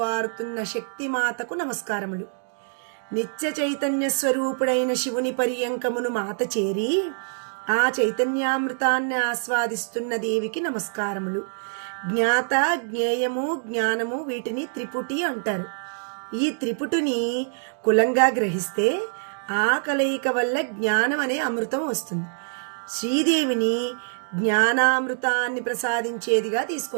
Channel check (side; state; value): left; silent; digital silence